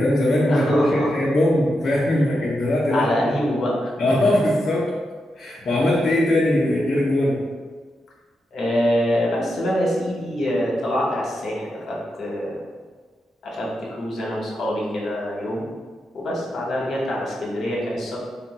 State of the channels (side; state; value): both; normal; correlation 0.86